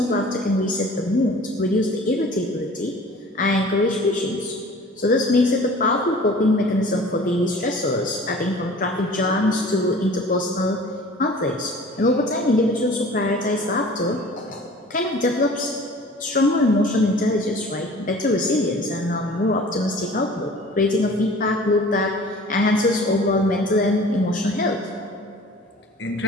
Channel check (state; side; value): normal; both; correlation 0.46